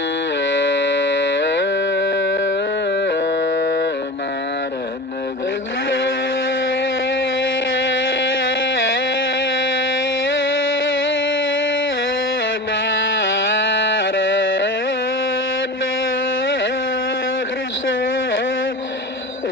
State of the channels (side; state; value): both; normal; correlation 0.31